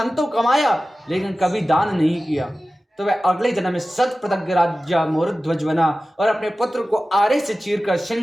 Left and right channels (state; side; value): normal; both; correlation 0.95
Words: तो कमाया लेकिन कभी दान नहीं किया, तो वह अगले जन्म में शतप्रतज्ञ राजा मोरध्वज बना और अपने पुत्र को आरे से चीरकर